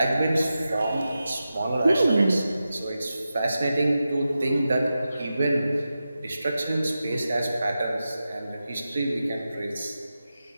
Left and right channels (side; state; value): both; inverted; correlation -0.92